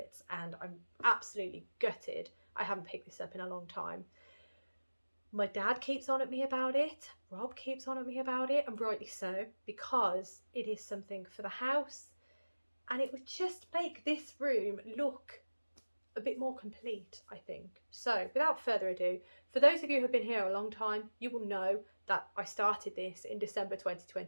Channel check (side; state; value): both; inverted; correlation -1.00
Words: and I'm absolutely gutted I haven't picked this up in a long time. My dad keeps on at me about it, Rob keeps on at me about it, and rightly so, because it is something for the house, and it would just make this room look a bit more complete, I think. So without further ado, for those of you who have been here a long time, you will know that I started this in December